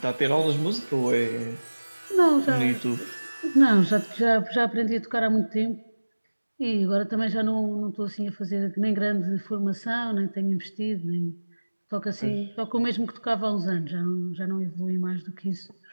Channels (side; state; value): both; inverted; correlation -1.00